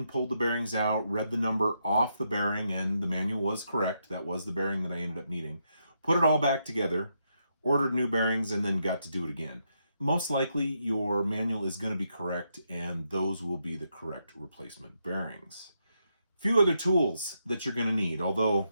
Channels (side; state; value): both; inverted; correlation -0.80